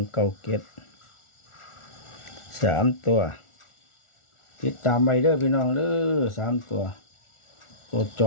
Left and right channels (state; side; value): late; right; 1.4 ms